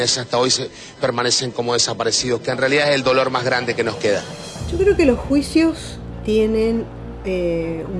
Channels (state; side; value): identical; both; correlation 1.00